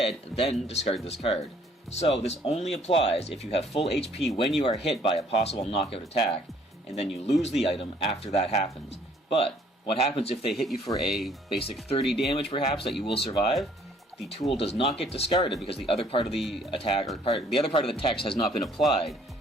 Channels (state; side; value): normal; both; correlation 0.61